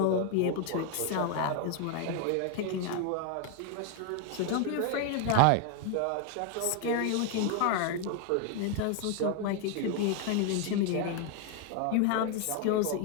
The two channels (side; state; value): both; different; correlation 0.01